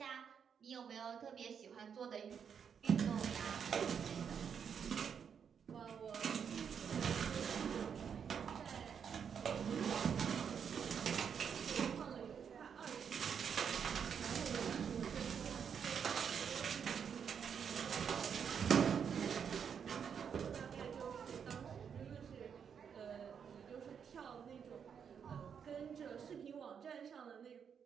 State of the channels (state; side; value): quieter; left; 7.3 dB